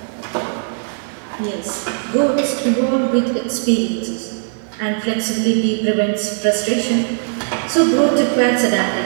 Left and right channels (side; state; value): left; silent; digital silence